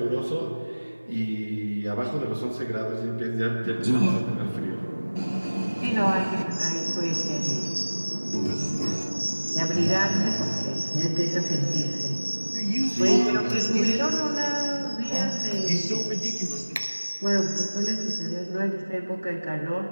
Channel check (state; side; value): inverted; both; correlation -1.00